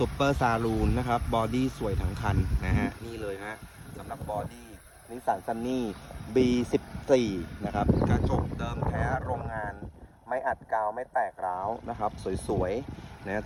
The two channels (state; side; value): identical; both; correlation 1.00